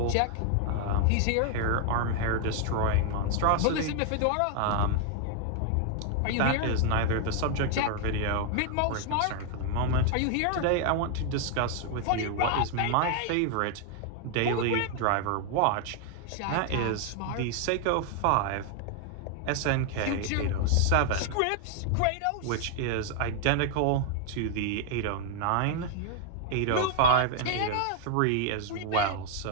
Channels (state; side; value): different; both; correlation 0.00